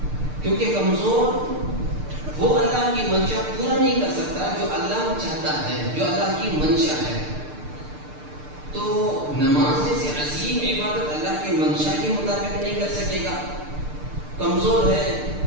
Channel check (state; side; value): late; left; 6.7 ms